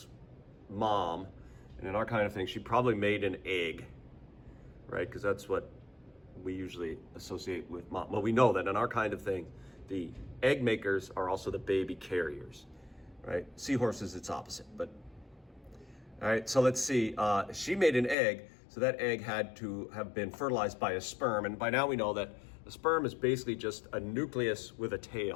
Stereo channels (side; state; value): right; drops out; at 18.2 s